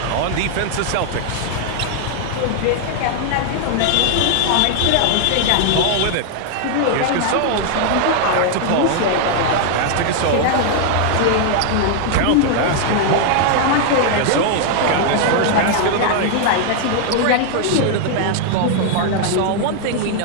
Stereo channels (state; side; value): different; both; correlation 0.00